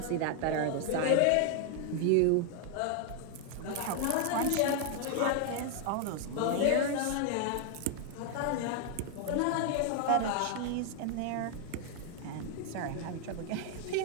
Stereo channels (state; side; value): different; both; correlation 0.00